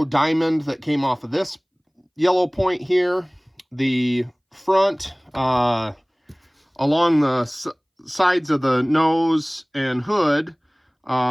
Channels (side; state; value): both; identical; correlation 1.00